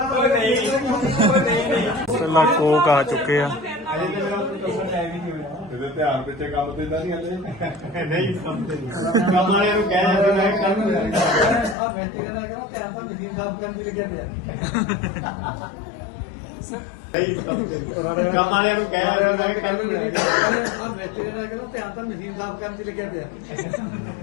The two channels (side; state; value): right; drops out; at 11.8 s